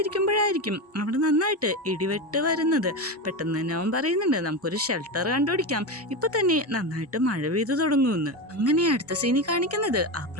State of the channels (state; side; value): normal; both; correlation 0.18